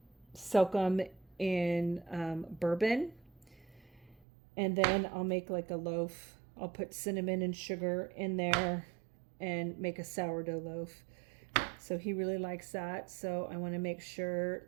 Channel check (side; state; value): left; drops out; at 4.2 s